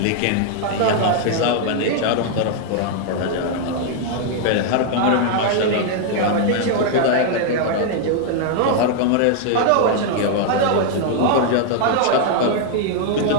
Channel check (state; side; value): different; both; correlation 0.00